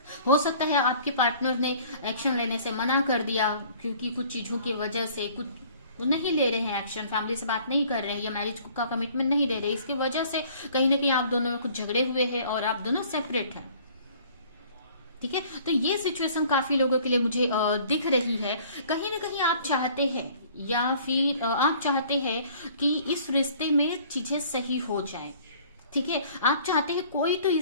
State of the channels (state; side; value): inverted; both; correlation -0.53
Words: हो सकता है आपके पार्टनर ने एक्शन लेने से मना कर दिया, क्योंकि कुछ चीजों की वजह से कुछ वो नहीं ले रहे हैं एक्शन, फैमिली से बात नहीं कर रहे हैं, या मैरिज का कमिटमेंट नहीं दे रहे, इसकी वजह से कहीं ना कहीं आप दोनों में कुछ झगड़े हुए हैं और आप दोनों सेपरेट हैं। ठीक है। तो ये सिचुएशन काफी लोगों के लिए मुझे दिख रही है। कहीं ना कहीं आप चाहते हैं, या फिर आप चाहते हैं कि इस रिश्ते में चीजें सही हो जाए। ठीक है। आप चाहते हैं कोई तो